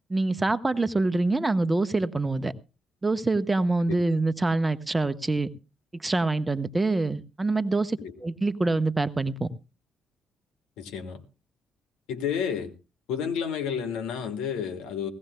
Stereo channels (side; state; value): both; normal; correlation 0.88